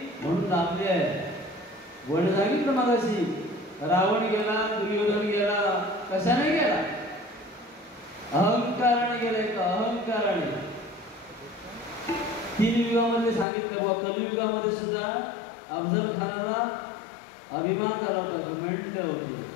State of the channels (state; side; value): drops out; right; at 13.5 s